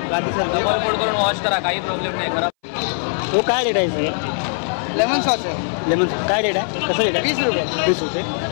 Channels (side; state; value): right; silent; 62 dB below the other